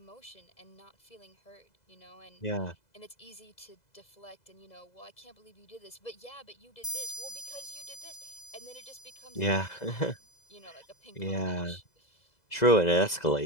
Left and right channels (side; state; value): right; late; 2.0 ms